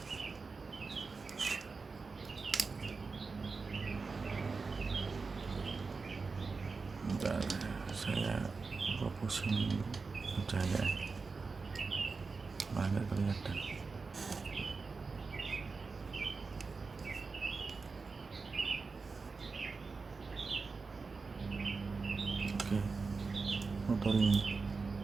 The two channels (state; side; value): quieter; left; 4.4 dB